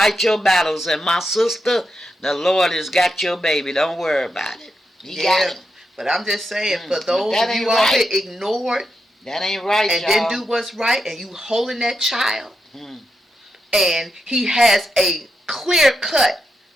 your battles. And my sister, the Lord has got your baby. Don't worry about it. He got him. But I'm just saying, for those of you out here ignored, that ain't right, and y'all. didn't do what's right, and you holding that child, and he has a clear-cut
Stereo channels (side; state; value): both; normal; correlation 0.85